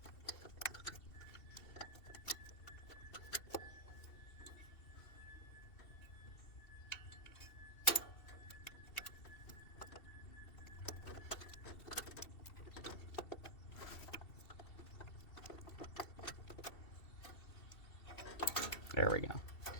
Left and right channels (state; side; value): late; right; 2.7 ms